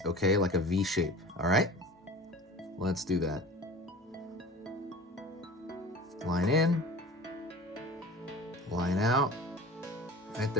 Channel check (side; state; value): both; normal; correlation 0.38